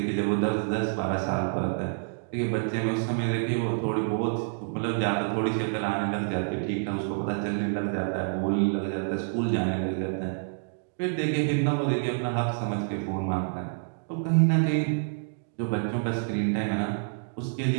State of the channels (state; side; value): silent; left; digital silence